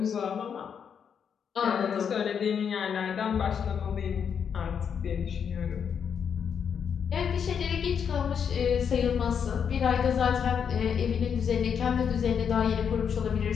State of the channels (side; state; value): right; quieter; 7.3 dB